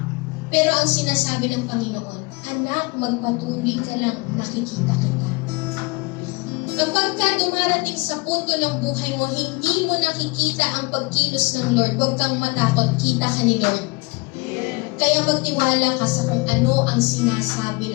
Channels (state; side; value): quieter; right; 26.8 dB